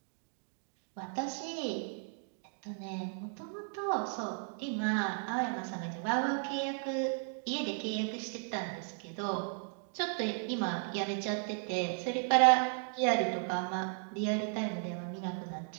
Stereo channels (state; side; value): silent; left; 54 dB below the other